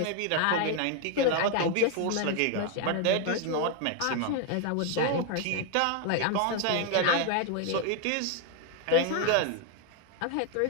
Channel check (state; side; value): different; both; correlation 0.01